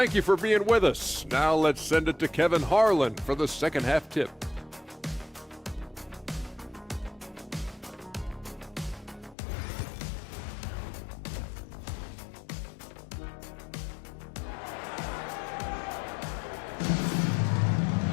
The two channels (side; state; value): right; drops out; at 9.3 s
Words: you for being with us. Now let's send it to Kevin Harlan for the second half tip.